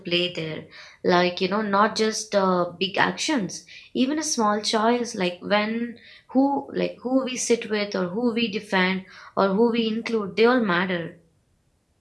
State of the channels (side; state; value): both; identical; correlation 1.00